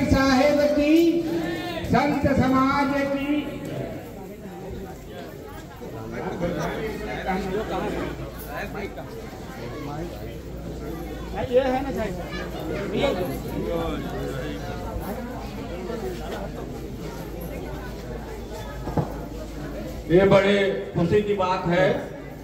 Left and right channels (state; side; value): identical; both; correlation 1.00